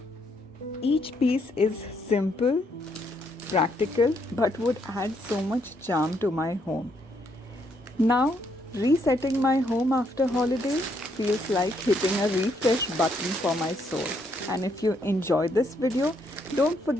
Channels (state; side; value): normal; both; correlation 0.73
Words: Each piece is simple, practical, but would add so much charm to my home. Now, resetting my home after holidays feels like hitting a refresh button for my soul. And if you enjoyed this video, don't